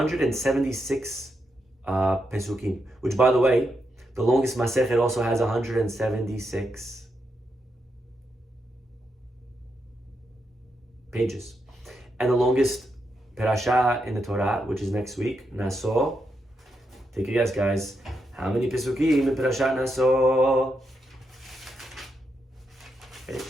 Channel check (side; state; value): both; normal; correlation 0.83